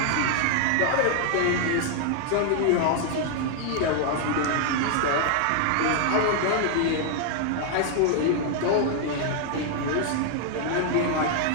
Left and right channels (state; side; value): different; both; correlation 0.00